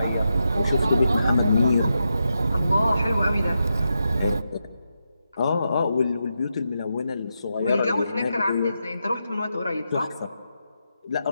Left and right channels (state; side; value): inverted; both; correlation -0.86